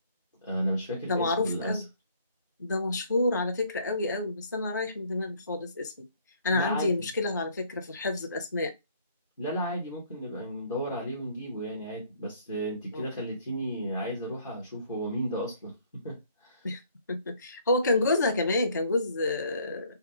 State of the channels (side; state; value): both; inverted; correlation -0.61